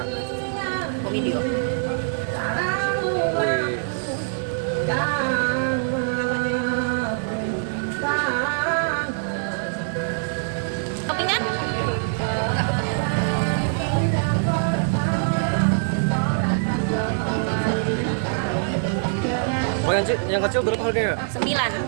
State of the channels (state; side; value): silent; left; digital silence